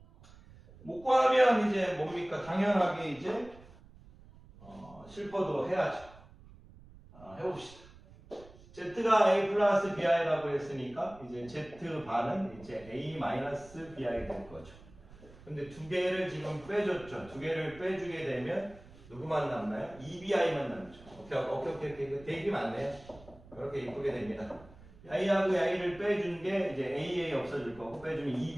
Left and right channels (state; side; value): noise; right; rumble, 22 dB below the sound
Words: 못 구하면 이제 뭡니까? 당연하게 이제 실퍼도 해야죠. 해봅시다. Z가 A 플러스 BI라고 했으니까 이제 Z반은 이제 A 마이너스 BI 될 거죠. 근데 두 개를 지금 빼줬죠. 두 개를 빼주게 되면 누구만 남나요? EBI만 남죠. 오케이. 되게 많네요. 그렇게 이쁘게 됩니다. I하고 I를 빼준 게 이제 AA 없어질 거고 빼주면